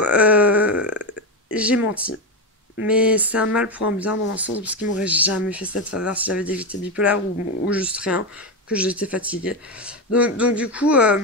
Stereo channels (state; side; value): normal; both; correlation 0.12